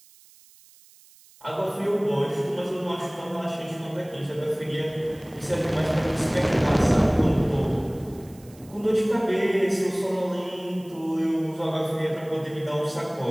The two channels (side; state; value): right; noise; hiss, 26 dB below the sound